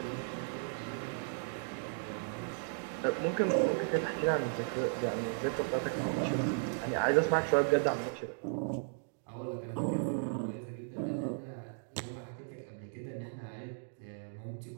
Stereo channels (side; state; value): left; silent; digital silence